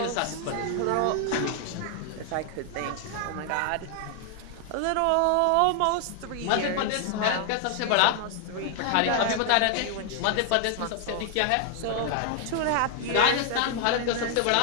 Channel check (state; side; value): different; both; correlation 0.00